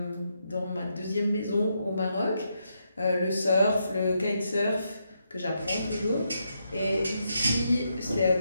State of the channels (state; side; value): inverted; both; correlation -0.81